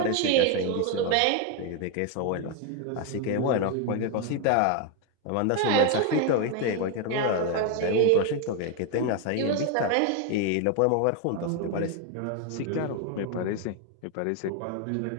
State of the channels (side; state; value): both; different; correlation 0.01